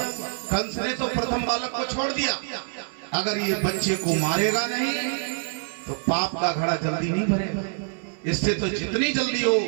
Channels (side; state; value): left; silent; 61 dB below the other